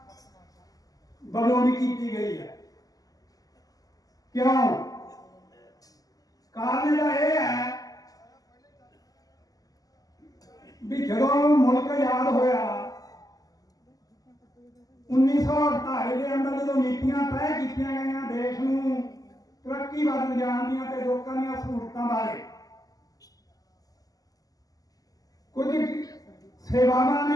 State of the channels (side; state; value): right; late; 0.17 ms